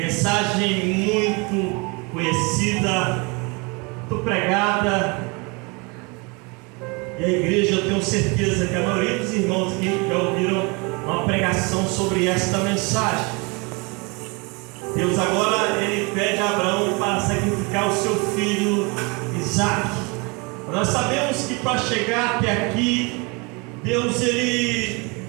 muito conhecida, muito pregada, e a igreja, eu tenho certeza que a maioria dos irmãos aqui já ouviram uma pregação sobre esta mensagem. Deus agora ele pede a Abraão para sacrificar o seu filho Isaque. Nós sabemos que para chegar até aqui, Deus ele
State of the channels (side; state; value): left; quieter; 29.4 dB